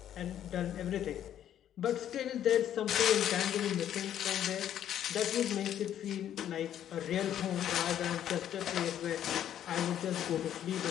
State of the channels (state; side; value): quieter; right; 10.6 dB